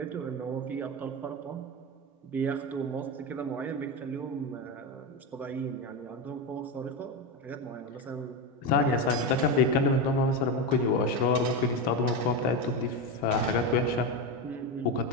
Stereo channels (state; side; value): normal; both; correlation 0.15